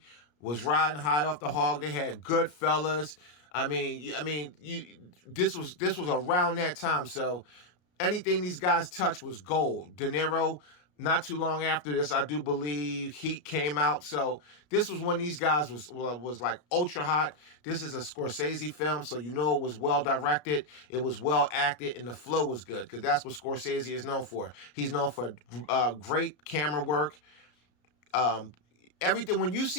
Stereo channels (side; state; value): right; late; 33 ms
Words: was riding high off the hog. They had Goodfellas. This was around that time. So anything these guys touched was gold. De Niro, not too long after this, I do believe Heat came out. So this was when these guys was like ultra hot. This is a Scorsese film, so you know it was well directed, it was well acted, and the flow was good, because that's what Scorsese is known for. He's known for great camera work. Everything, when you